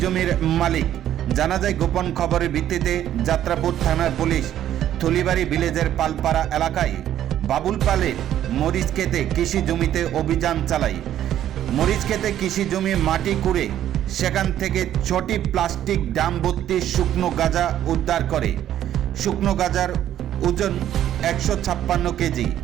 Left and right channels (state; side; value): quieter; left; 11.5 dB